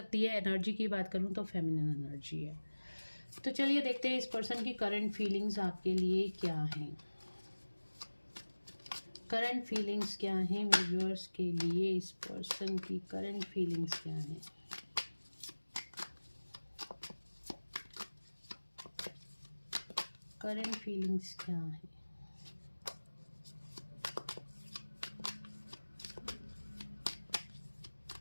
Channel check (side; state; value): both; inverted; correlation -1.00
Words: है। एनर्जी की बात करूँ तो फेमिनिन एनर्जी है। तो चलिए देखते हैं इस पर्सन की करंट फीलिंग्स आपके लिए क्या हैं। करंट फीलिंग्स क्या हैं मेरे व्यूअर्स के लिए, इस पर्सन की करंट फीलिंग्स क्या हैं। करंट फीलिंग्स क्या हैं।